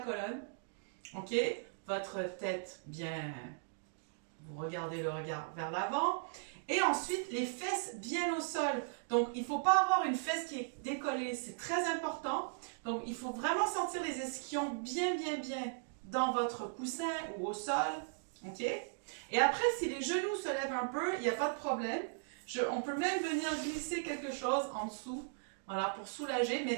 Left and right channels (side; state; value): left; silent; digital silence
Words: ok, votre tête bien, vous regardez le regard vers l'avant, et ensuite les fesses bien au sol. Donc il ne faut pas avoir une fesse qui est décollée, c'est très important. Donc il faut vraiment sentir les ischions bien dans votre coussin ou au sol, ok. Et après, si les genoux se lèvent un peu, il n'y a pas de problème. On peut même venir glisser quelque chose en dessous, voilà, pour soulager,